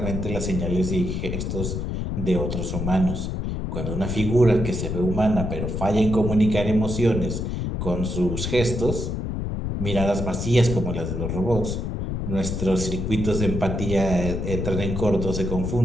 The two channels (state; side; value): noise; left; rumble, 3 dB below the sound